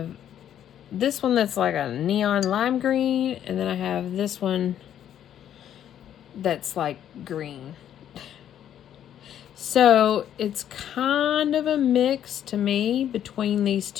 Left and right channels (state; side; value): quieter; right; 10.3 dB